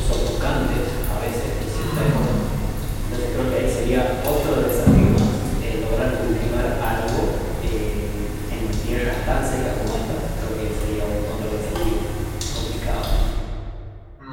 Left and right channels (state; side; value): identical; both; correlation 1.00